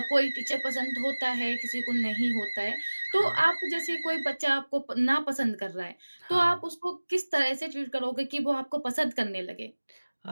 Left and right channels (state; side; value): inverted; both; correlation -1.00